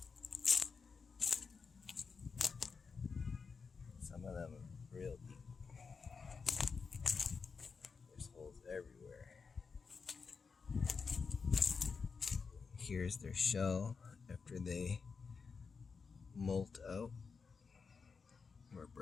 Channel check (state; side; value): quieter; right; 5.2 dB